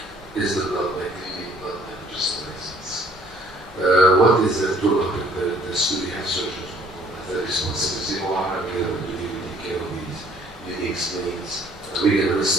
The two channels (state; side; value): normal; both; correlation 0.59